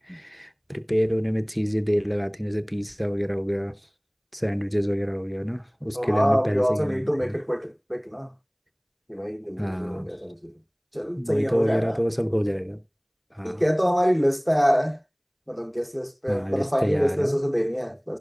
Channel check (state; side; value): identical; both; correlation 1.00